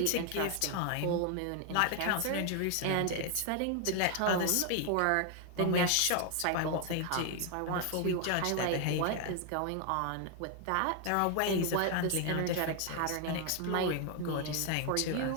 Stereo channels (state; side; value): different; both; correlation 0.00